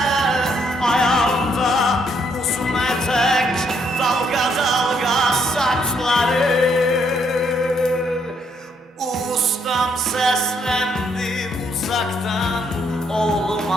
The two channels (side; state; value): both; normal; correlation 0.72